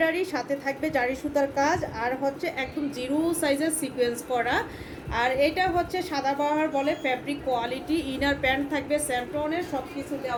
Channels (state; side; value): identical; both; correlation 1.00